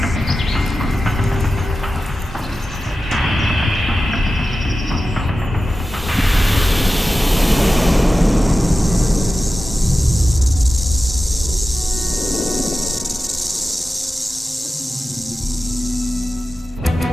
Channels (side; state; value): both; normal; correlation 0.94